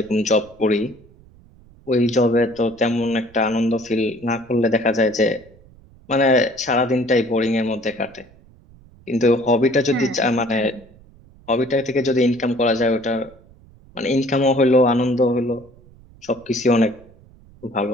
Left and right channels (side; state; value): right; noise; rumble, 26 dB below the sound